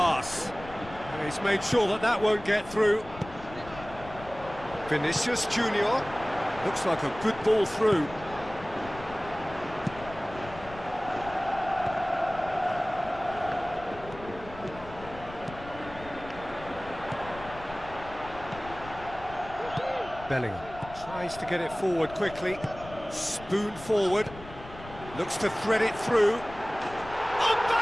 He's made sure that that won't get through. Vinicius Junior. Looks like a good ball through. Bellingham tries to get it forward quickly. Spoon forward, looks to thread it through.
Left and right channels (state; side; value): noise; left; rumble, 16 dB below the sound